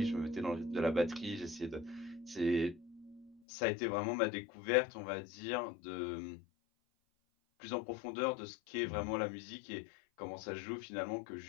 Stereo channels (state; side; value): drops out; right; at 3.4 s